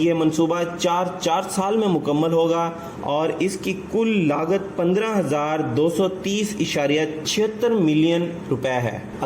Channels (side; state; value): both; identical; correlation 1.00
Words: منصوبہ 4 سال میں مکمل ہوگا اور اس کی کل لاگت 15,230.76 ملین روپے ہے.